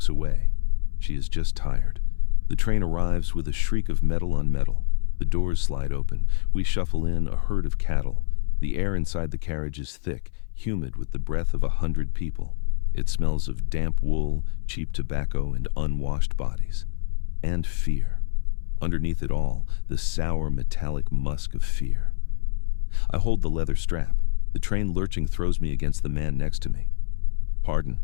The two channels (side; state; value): right; silent; 59 dB below the other